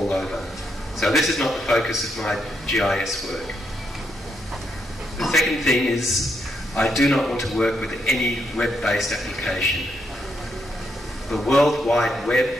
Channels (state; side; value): normal; both; correlation 0.79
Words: over. So this is not the focus of my GIS work. The second thing is I do not want to work with any web-based application. The World Wide